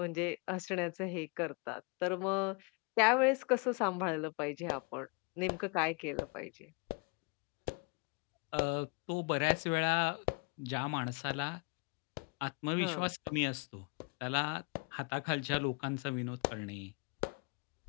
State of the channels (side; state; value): right; quieter; 31.4 dB